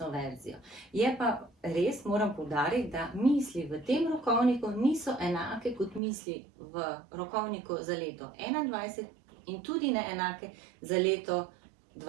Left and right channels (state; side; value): drops out; left; at 6.0 s